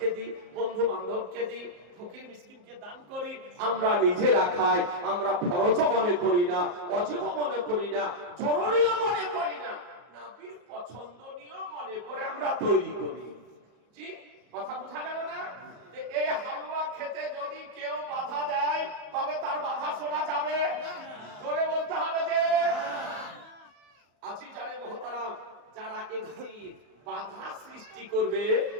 দিই, বন্ধু বান্ধবকে দিই, ফকির মিসকিনকে দান করি। আমরা নিজেরা খাই, আমরা ফরজ মনে করি না, ওয়াজিব মনে করি না, জরুরিও মনে করি না, নবীর পছন্দনীয় মনে করে আমরা তৈরি করি। জি, কথা বোঝা গেল না? এই হালুয়া খেতে যদি কেউ বাধা দেয়, তবে তার বাধা শোনা যাবে? জোরে বলতে হবে যে আজি জানে মোহতারাম, যারা একটি বাধা সৃষ্টি করবে,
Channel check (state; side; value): late; left; 34 ms